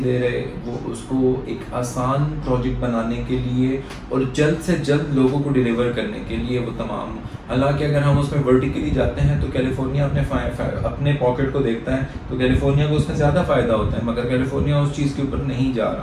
دے رہے، وہ اس کو ایک آسان پروجیکٹ بنانے کے لیے اور جلد سے جلد لوگوں کو ڈیلیور کرنے کے لیے وہ تمام. حالانکہ اگر ہم اس میں ورٹیکلی جاتے ہیں تو کیلیفورنیا اپنے پاکٹ کو دیکھتا ہے تو کیلیفورنیا کو اس میں زیادہ فائدہ ہوتا ہے، مگر کیلیفورنیا اس چیز کے اوپر نہیں جا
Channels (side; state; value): both; identical; correlation 1.00